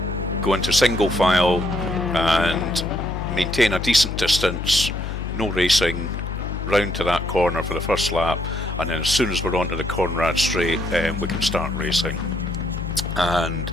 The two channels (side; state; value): left; noise; hum, 5 dB below the sound